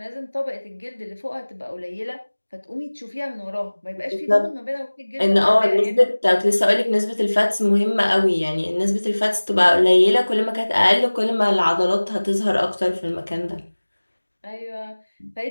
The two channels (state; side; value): inverted; both; correlation -1.00